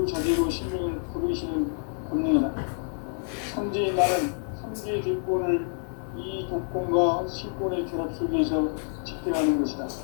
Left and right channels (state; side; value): silent; right; 56 dB below the other